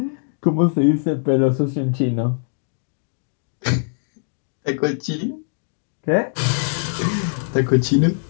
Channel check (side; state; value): right; silent; digital silence